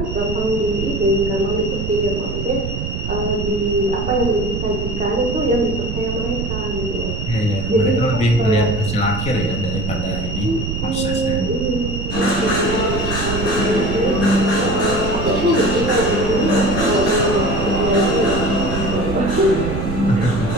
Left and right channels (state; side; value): noise; right; rumble, 4 dB below the sound